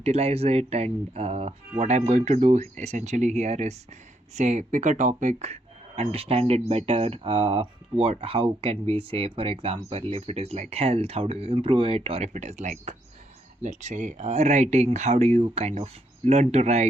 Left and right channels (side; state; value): both; normal; correlation 0.76